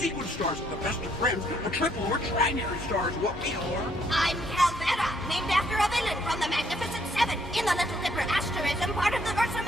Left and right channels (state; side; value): normal; both; correlation 0.69